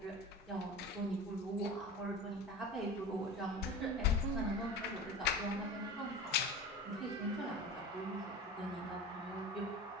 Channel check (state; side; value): normal; both; correlation 0.33